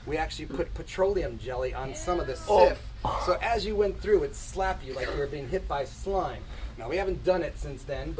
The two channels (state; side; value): identical; both; correlation 1.00